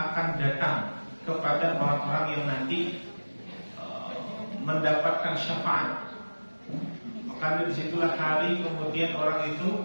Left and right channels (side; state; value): both; inverted; correlation -1.00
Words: datang kepada orang-orang yang nanti mendapatkan syafaat. Maka disitulah hari kemudian orang